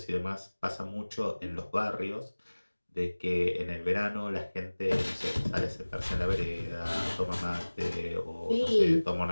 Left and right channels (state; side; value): inverted; both; correlation -1.00